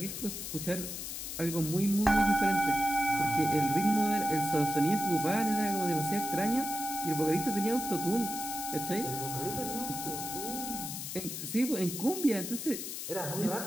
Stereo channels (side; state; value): left; noise; hiss, 6 dB below the sound